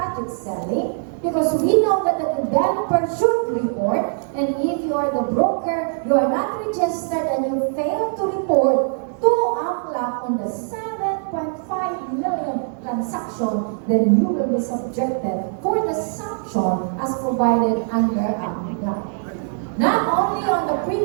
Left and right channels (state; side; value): silent; left; digital silence